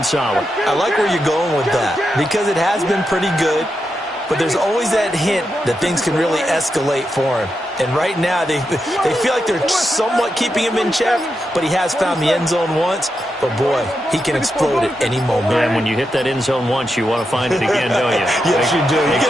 solid. I like where you're going with that because it has been pretty good, but there's always that hint that things can really escalate for him. And right now, they feel like they're somewhat keeping him in check, but he has found the end zone once. But, boy, he can explode at any moment. And when you hit that end zone once, you want to find it again, don't you? Yes, you do. Makes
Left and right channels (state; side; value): normal; both; correlation 0.86